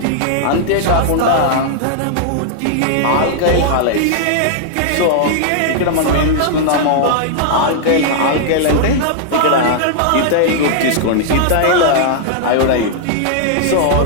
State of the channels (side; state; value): both; different; correlation -0.01